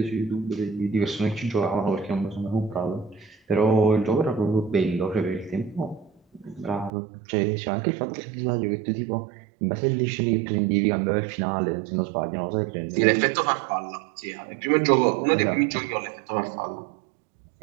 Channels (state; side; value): drops out; left; at 6.9 s